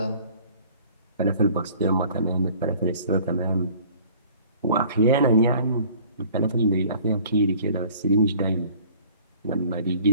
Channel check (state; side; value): inverted; both; correlation -0.52